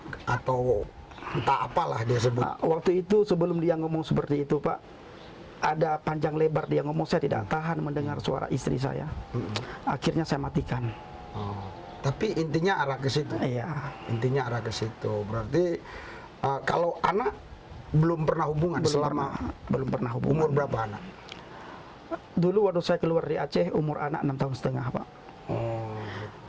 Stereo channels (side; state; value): both; identical; correlation 1.00